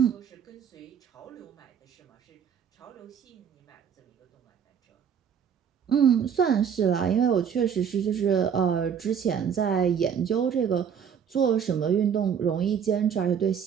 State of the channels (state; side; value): quieter; left; 7.7 dB